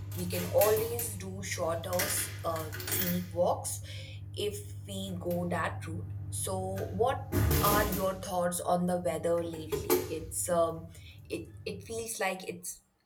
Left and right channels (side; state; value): both; identical; correlation 1.00